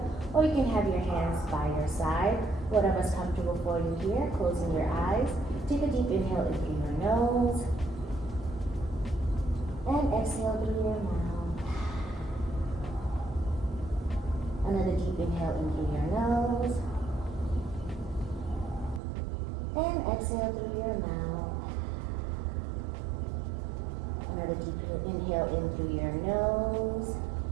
or you can have your hands by your side. Whatever's comfortable for you here. Closing your eyes. Take a deep inhale in through your nose. And exhale through your mouth. Another deep inhale in through your nose. And exhale through your mouth. Another deep inhale in through your nose.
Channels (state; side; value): drops out; left; at 19.0 s